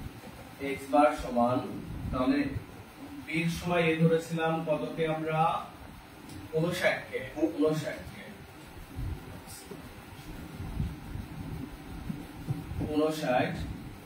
x বার সমান, তাহলে বি এর সময় এ ধরেছিলাম কতকে আমরা 59 কে, 59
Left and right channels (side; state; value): both; identical; correlation 1.00